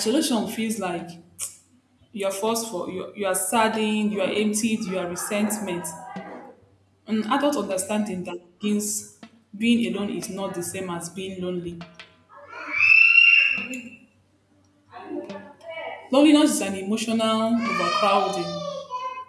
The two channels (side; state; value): both; identical; correlation 1.00